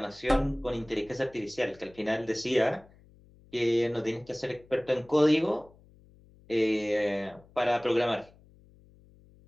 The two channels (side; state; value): left; noise; hum, 27 dB below the sound